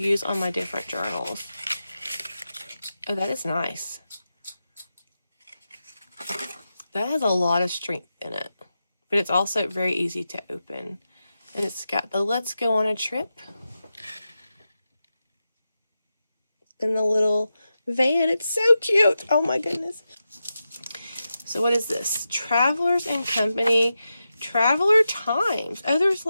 on my different journals. Oh, that is nice. That has a lot of strength in it, but it's also very easy to open. And it's got the Let's Go on a Trip and the little van. It's so cute. Oh my goodness. So what is this? Travelers and Company, Traveler Times. Oh, there's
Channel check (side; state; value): both; inverted; correlation -0.90